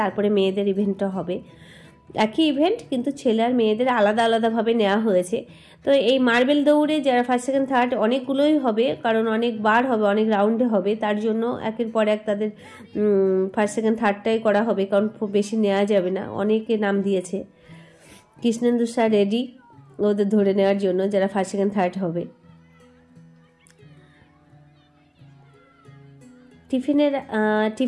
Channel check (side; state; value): both; identical; correlation 1.00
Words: তারপরে মেয়েদের ইভেন্টটা হবে। একই ইভেন্ট, কিন্তু ছেলে আর মেয়েদের আলাদা আলাদাভাবে নেওয়া হয়েছে। তো এই মার্বেল দৌড়ে যারা ফার্স্ট, সেকেন্ড, থার্ড অনেকগুলোই হবে, কারণ অনেক বার হবে, অনেক রাউন্ডে হবে। তার জন্য একের পর এক তাদের ফার্স্ট, সেকেন্ড, থার্ডটাই করা হবে, কারণ খুব বেশি নেওয়া যাবে না। অনেকে নাম দিয়েছে। কৃষ্ণেন্দু স্যার রেডি ওদের ধরে নেওয়ার জন্য, যারা ফার্স্ট, সেকেন্ড, থার্ড হবে।